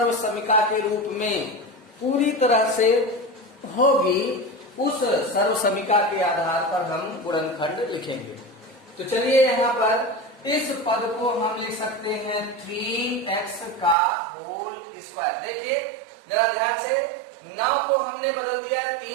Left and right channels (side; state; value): left; drops out; at 14.0 s